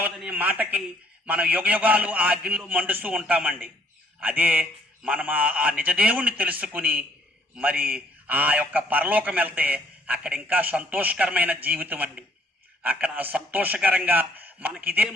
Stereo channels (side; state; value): both; normal; correlation 0.63